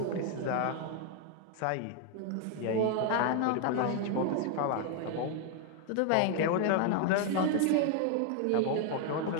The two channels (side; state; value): both; different; correlation 0.00